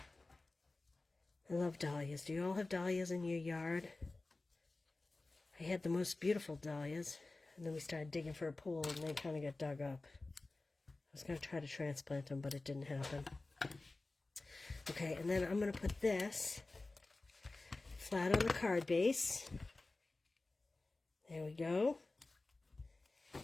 love dahlias. Do you all have dahlias in your yard? I had the most beautiful dahlias, and then we started digging for a pool, and they kind of got dug up. I was going to try to transplant them, but it didn't happen. Okay, and then I'm going to put this flat on the card base. There we go.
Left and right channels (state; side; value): quieter; right; 3.2 dB